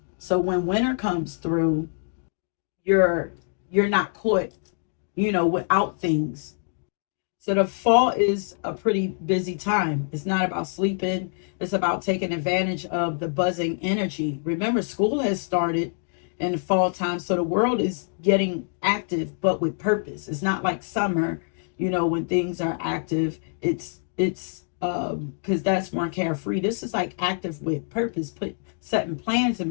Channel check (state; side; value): silent; right; digital silence